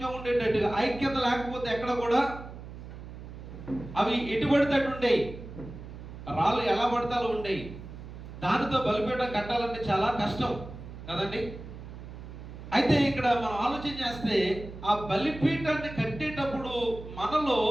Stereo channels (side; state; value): right; noise; hum, 13 dB below the sound